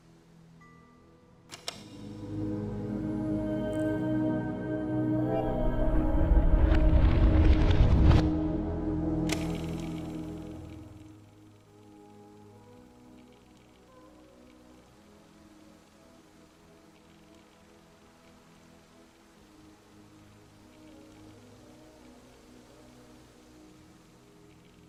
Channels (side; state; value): both; identical; correlation 1.00